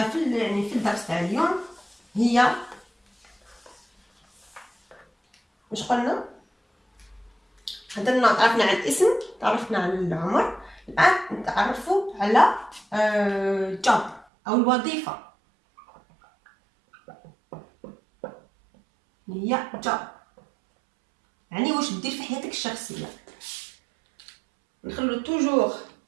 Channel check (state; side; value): drops out; left; at 14.2 s